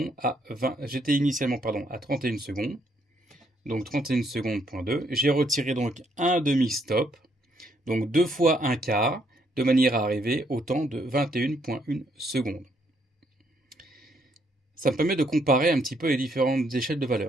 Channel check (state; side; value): normal; both; correlation 0.72